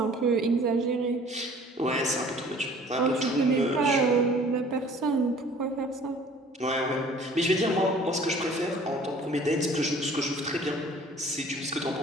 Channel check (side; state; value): both; normal; correlation 0.51